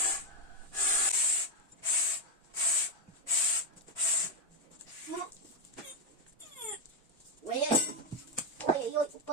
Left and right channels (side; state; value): both; normal; correlation 0.05